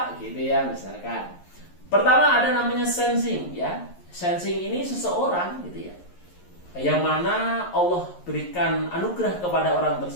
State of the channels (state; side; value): late; right; 11 ms